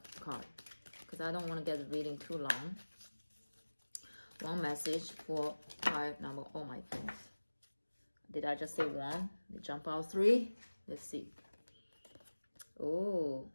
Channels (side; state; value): both; inverted; correlation -1.00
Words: card, because I don't want to get the reading too long. One message for card number, oh my goodness, did I just say one? They jump out 3. Let's see. Oh,